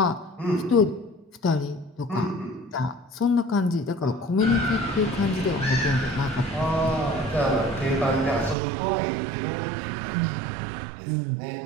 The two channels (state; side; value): drops out; left; at 8.6 s